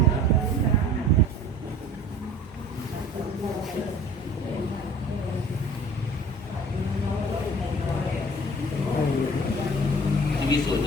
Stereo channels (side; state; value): both; normal; correlation 0.46